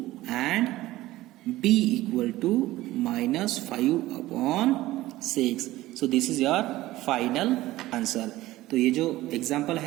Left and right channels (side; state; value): left; quieter; 16.8 dB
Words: and b equal to -5/6. So this is your final answer. तो ये जो एग्जाम्पल